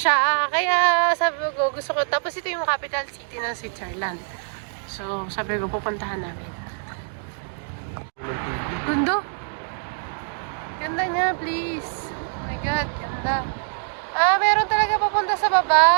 Kaya sabi ko, gusto ko. Tapos ito yung capital city ng Switzerland. So, sabi ko, pupuntahan namin. Gundo. Ganda niya, please. Oh my God, ganda. Meron talaga papunta sa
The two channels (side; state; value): left; silent; 63 dB below the other